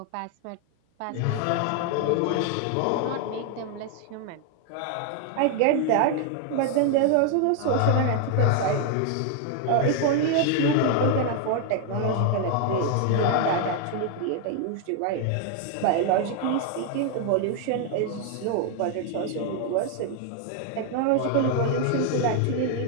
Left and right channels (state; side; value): different; both; correlation 0.00